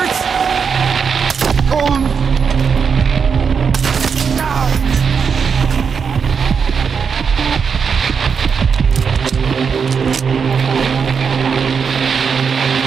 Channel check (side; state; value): left; quieter; 6.2 dB